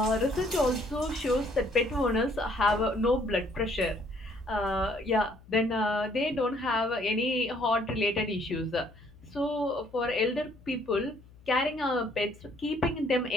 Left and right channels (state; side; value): noise; left; hum, 23 dB below the sound